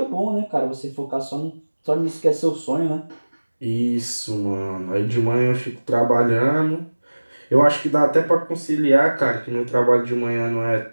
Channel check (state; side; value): inverted; both; correlation -1.00